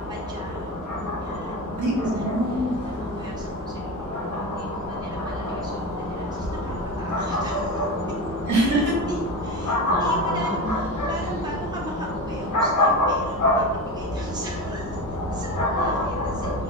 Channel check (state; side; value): normal; both; correlation 0.24